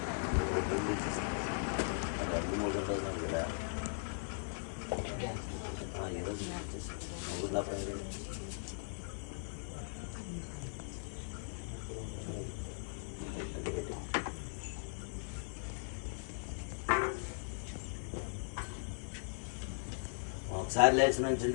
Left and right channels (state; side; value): silent; right; 52 dB below the other